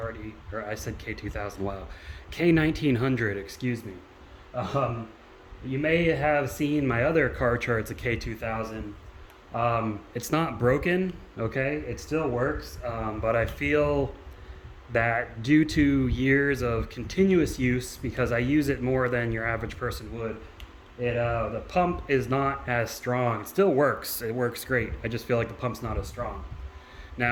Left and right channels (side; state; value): both; identical; correlation 1.00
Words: said K2000, wow. K1900, excuse me. You may have seen my other Karcher, it's a K2000. It's not broken, okay? It still works, but I feel that due to years of continuous use, because I use it more than your average person would, the pump is not as strong. It still works. It works great. I just feel like the pump's not as strong.